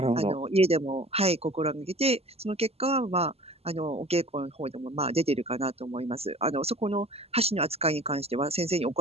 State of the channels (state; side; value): late; left; 0.29 ms